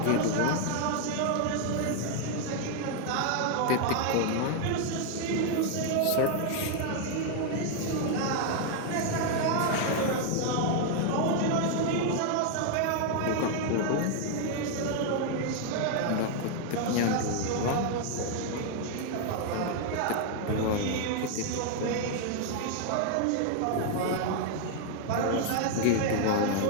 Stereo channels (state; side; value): different; both; correlation 0.00